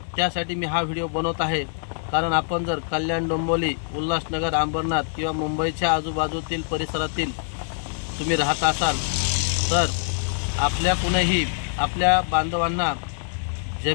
त्यासाठी मी हा व्हिडिओ बनवत आहे। कारण आपण जर कल्याण, डोंबिवली, उल्हासनगर, अंबरनाथ किंवा मुंबईच्या आजूबाजूतील परिसरातील तुम्ही राहत असाल तर आपल्या कुणीही आपल्या बांधवांना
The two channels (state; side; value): silent; right; digital silence